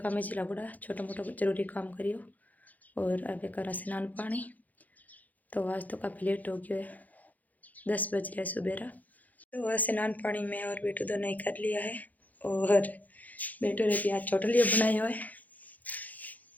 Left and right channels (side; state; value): right; late; 0.080 ms